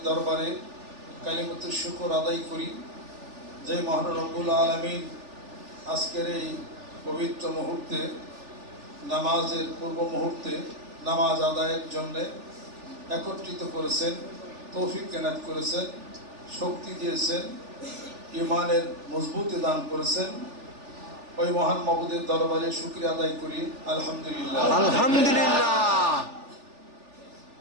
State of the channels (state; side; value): late; left; 3.4 ms